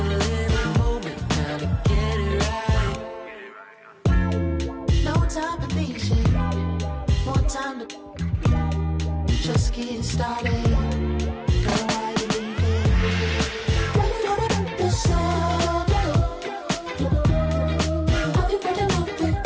little moment now to get it right. No time for patient, more time to just getting started. Girl, why you leaving? When you know about yourself, I'll be breaking up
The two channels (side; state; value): both; identical; correlation 1.00